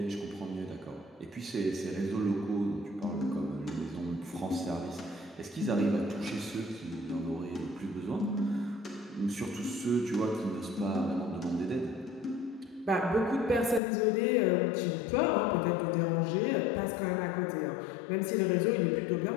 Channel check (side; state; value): right; drops out; at 13.8 s